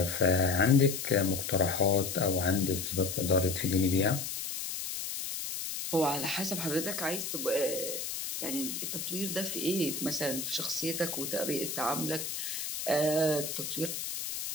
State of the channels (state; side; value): noise; left; hiss, 5 dB below the sound